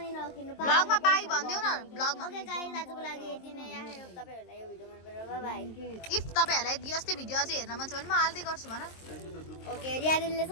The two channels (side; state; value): right; late; 23 ms